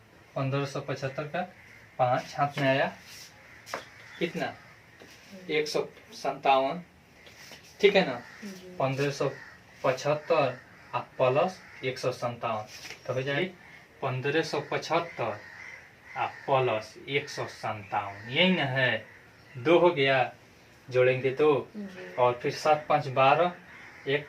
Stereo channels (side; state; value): both; identical; correlation 1.00